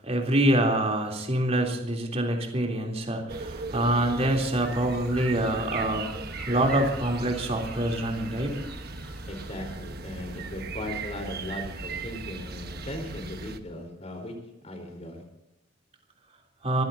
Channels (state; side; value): normal; both; correlation 0.51